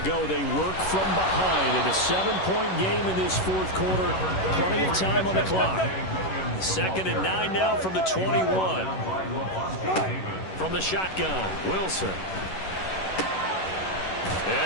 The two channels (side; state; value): right; late; 11 ms